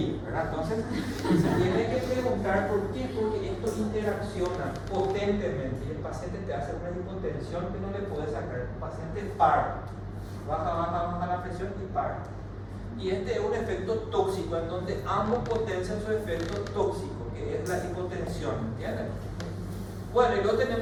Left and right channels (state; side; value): identical; both; correlation 1.00